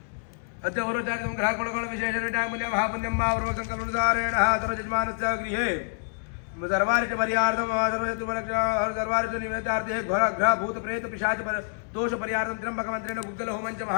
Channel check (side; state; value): right; silent; digital silence